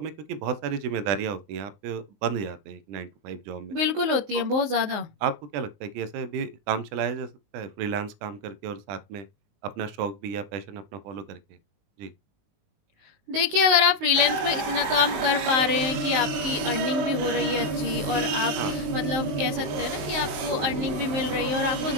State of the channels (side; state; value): left; late; 19 ms